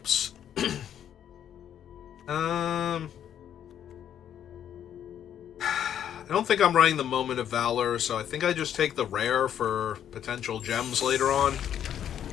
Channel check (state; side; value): quieter; right; 9.8 dB